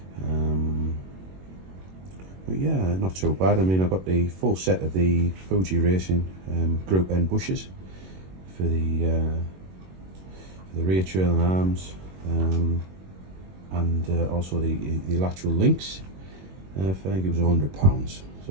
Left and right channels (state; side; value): late; left; 21 ms